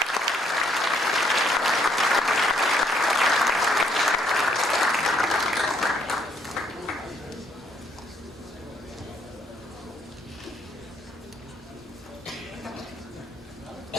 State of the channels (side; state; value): both; normal; correlation 0.68